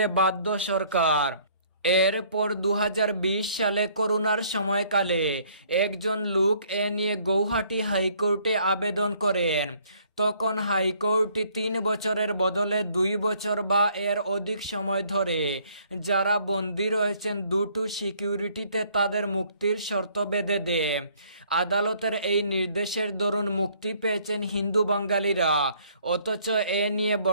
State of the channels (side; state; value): both; inverted; correlation -0.62